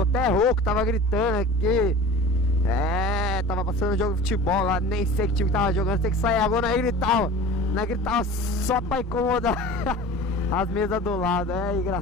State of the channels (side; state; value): both; normal; correlation 0.39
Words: até rouco, tava gritando aqui. Tava passando jogo de futebol lá. Nem sei que time que tava jogando. Sei que sair agora, aí gritava. Não gritava só pra incomodar as mesas do lado. É